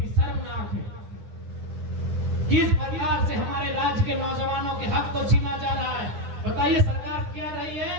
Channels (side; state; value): left; late; 9.8 ms